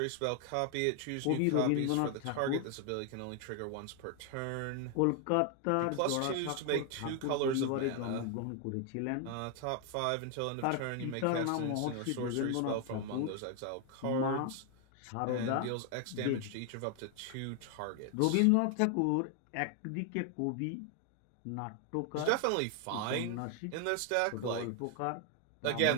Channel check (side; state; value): both; different; correlation 0.00